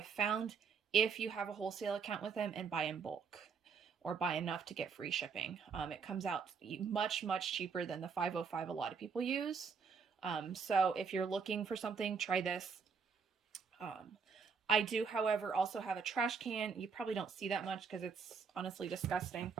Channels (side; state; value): left; quieter; 5.8 dB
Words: found if you have a wholesale account with them and buy in bulk, or buy enough to get free shipping. It comes out much, much cheaper than the 505 a lot of people use. So if you're looking for something, try this. I do, however, also have a trash can. You probably don't see that much because it's honestly disgusting.